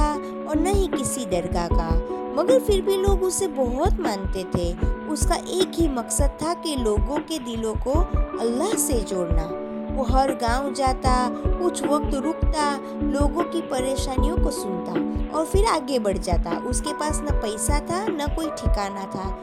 और न ही किसी दरगाह का, मगर फिर भी लोग उसे बहुत मानते थे। उसका एक ही मकसद था कि लोगों के दिलों को अल्लाह से जोड़ना। वो हर गांव जाता, कुछ वक्त रुकता, लोगों की परेशानियों को सुनता और फिर आगे बढ़ जाता। उसके पास न पैसा था न कोई ठिकाना था,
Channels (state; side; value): identical; both; correlation 1.00